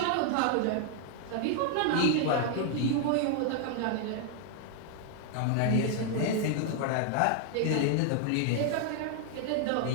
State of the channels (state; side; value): different; both; correlation 0.00